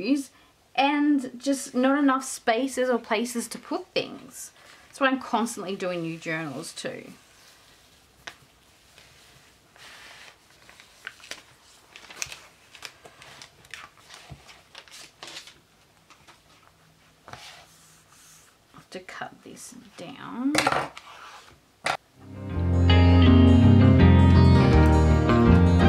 and just not enough spaces or places to put things. That's why I'm constantly doing new journals too. I have to cut this down.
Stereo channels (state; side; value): identical; both; correlation 1.00